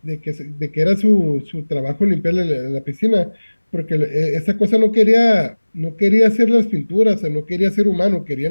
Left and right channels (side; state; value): both; inverted; correlation -1.00